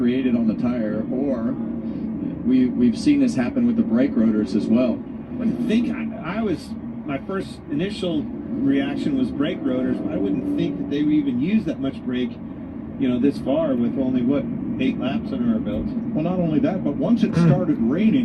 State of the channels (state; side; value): identical; both; correlation 1.00